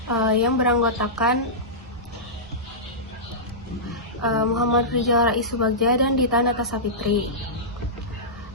yang beranggotakan Muhammad Rizal Rais Subagja dan Dita Natasha Fitri.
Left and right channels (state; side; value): normal; both; correlation -0.16